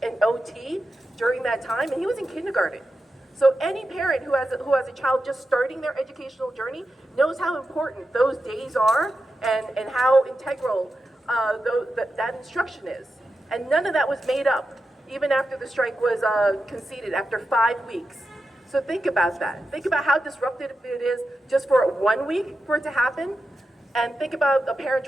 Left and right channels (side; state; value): both; normal; correlation 0.90